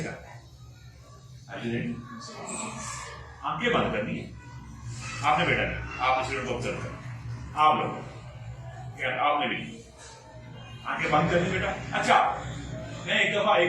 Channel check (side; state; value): both; identical; correlation 1.00